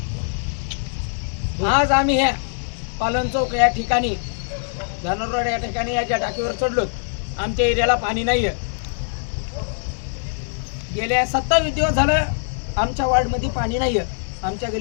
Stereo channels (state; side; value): silent; right; digital silence